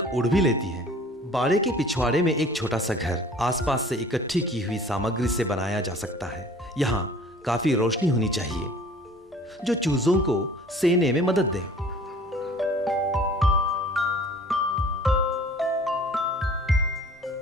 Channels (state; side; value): normal; both; correlation 0.48